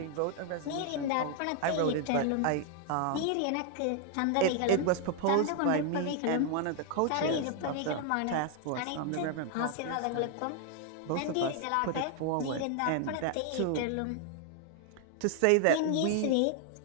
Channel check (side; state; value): both; different; correlation 0.00